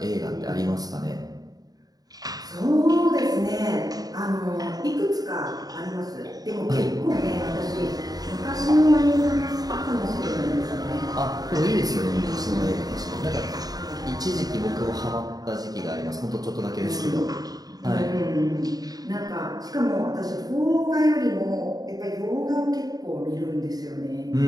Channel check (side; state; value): left; late; 0.18 ms